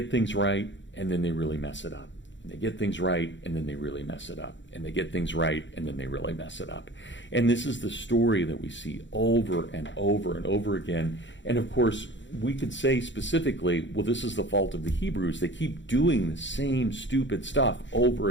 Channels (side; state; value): right; late; 0.54 ms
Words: things right, and then they really mess it up. They get things right, and then they really mess it up. And they get things right, and then they really mess it up. And this is the story that we see over and over and over again. And of course, we could say specifically, well, this is the fault of the Hebrews. They keep doing the same stupid stuff over